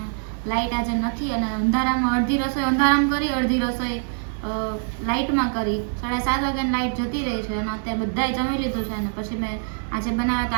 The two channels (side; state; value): left; silent; 63 dB below the other